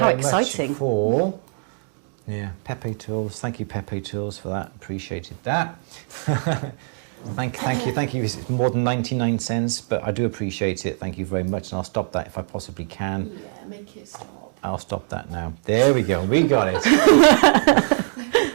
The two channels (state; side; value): silent; left; 63 dB below the other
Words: much for Pepe Tools. Thank you, Pepe Tools, for that. Appreciated that. Thank you. It's more than 99 cents, but I do appreciate it. Thank you very much, and I'll stop that if I possibly can. Yeah, make it stop. I'll stop that now. There we go. We got it.